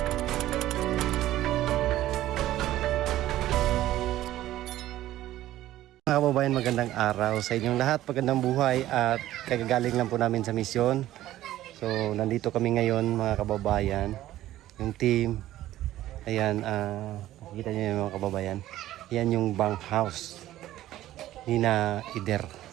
Mga kababayan, magandang araw sa inyong lahat, magandang buhay at kagagaling lang po namin sa misyon. So nandito kami ngayon mga kababayan, yung team. Ayan, nakikita nyo yung mga kababayan. Yan yung bunk house ni na Ider.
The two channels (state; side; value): quieter; left; 14.3 dB